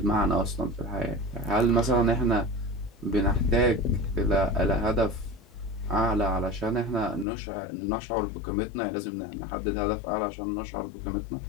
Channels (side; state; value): right; drops out; at 7.2 s